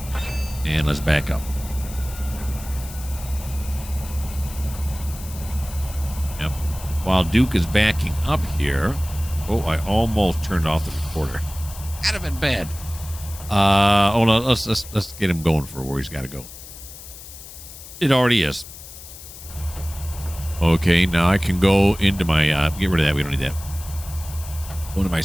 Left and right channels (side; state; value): left; noise; hiss, 15 dB below the sound